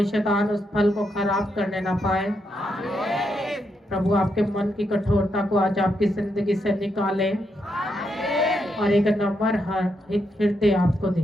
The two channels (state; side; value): normal; both; correlation 0.81